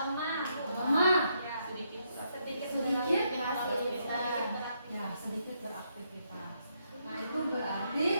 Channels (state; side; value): inverted; both; correlation -0.77